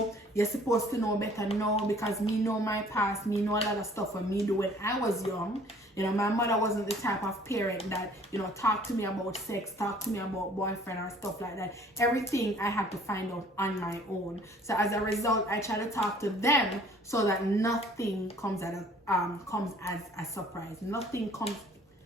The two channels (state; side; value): normal; both; correlation 0.54